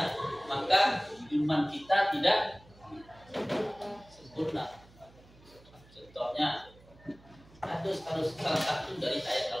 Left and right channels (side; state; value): right; noise; hum, 25 dB below the sound